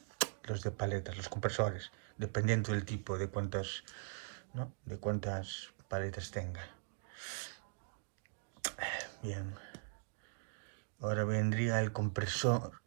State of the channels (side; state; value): left; silent; digital silence